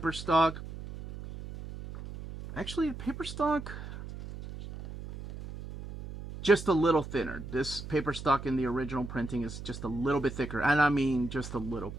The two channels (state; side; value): noise; right; hum, 10 dB below the sound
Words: stock. Actually, paper stock just a little thinner. This paper stock in the original printing is just a little bit thicker. And I mean just a little